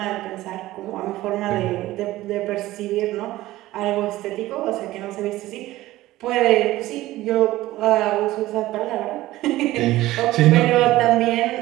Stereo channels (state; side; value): quieter; left; 16.6 dB